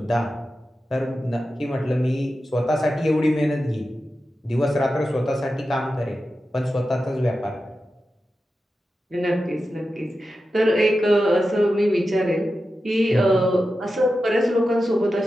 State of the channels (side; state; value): both; normal; correlation 0.92